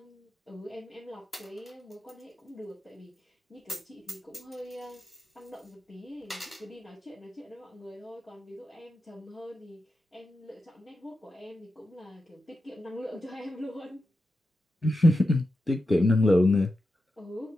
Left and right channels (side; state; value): both; normal; correlation 0.89